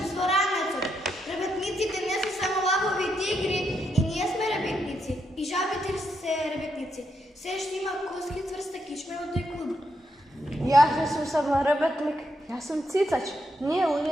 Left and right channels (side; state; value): both; normal; correlation 0.80